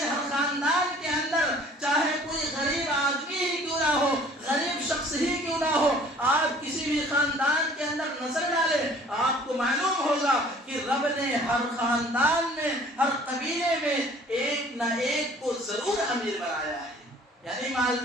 ہر خاندان کے اندر، چاہے کوئی غریب آدمی ہی کیوں نہ ہو، غریب شخص ہی کیوں نہ ہو، آپ کسی بھی خاندان کے اندر نظر ڈالیں، آپ کو معلوم ہوگا کہ رب نے ہر خاندان میں، ہر قبیلے میں ایک نہ ایک کو ضرور امیر بنایا ہے، یعنی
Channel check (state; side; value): normal; both; correlation 0.52